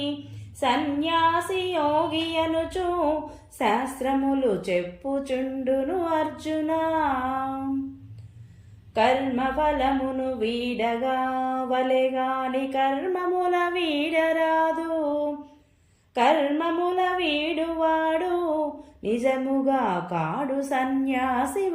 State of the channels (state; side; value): identical; both; correlation 1.00